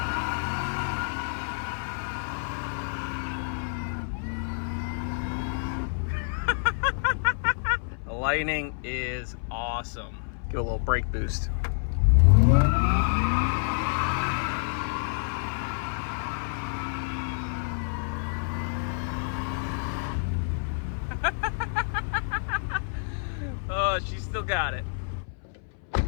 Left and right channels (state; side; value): silent; right; 57 dB below the other